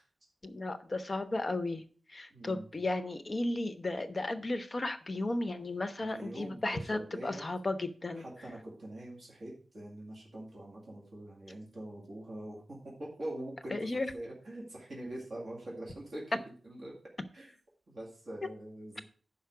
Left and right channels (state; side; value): normal; both; correlation 0.95